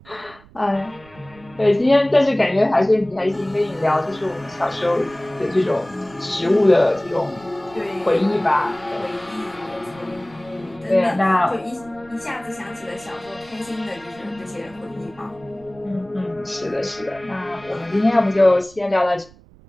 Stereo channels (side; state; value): right; noise; rumble, 24 dB below the sound